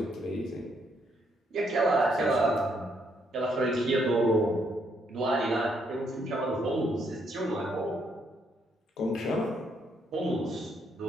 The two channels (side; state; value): both; normal; correlation 0.73